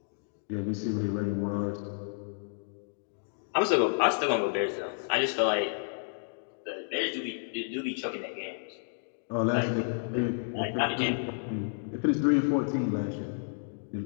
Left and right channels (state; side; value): silent; right; digital silence